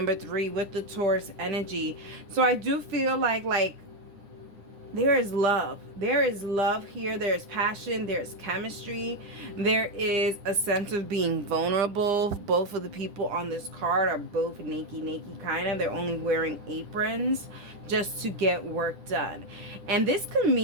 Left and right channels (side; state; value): left; late; 9.9 ms